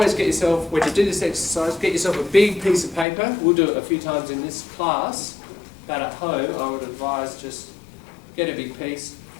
get yourself, when you do this exercise, get yourself a big piece of paper. We'll do it a few times in this class, but at home I would advise just get a big piece.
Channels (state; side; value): drops out; right; at 3.1 s